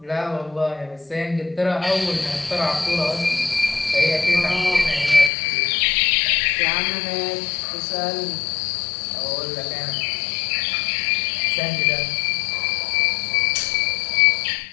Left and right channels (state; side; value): drops out; right; at 5.3 s